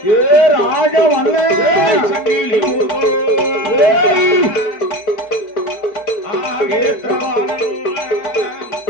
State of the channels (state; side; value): late; right; 4.6 ms